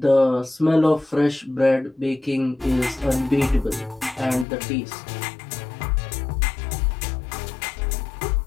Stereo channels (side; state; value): right; drops out; at 4.5 s